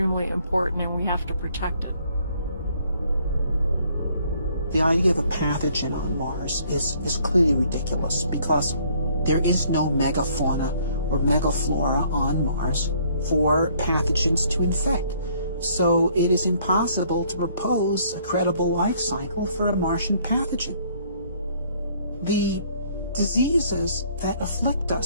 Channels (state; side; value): inverted; both; correlation -0.63